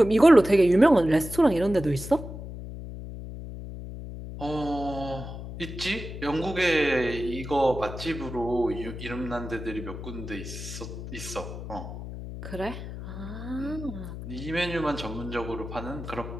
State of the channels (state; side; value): noise; left; hum, 9 dB below the sound